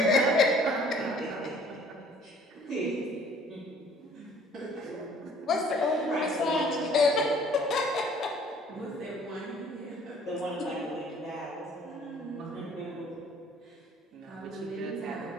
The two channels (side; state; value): both; normal; correlation 0.55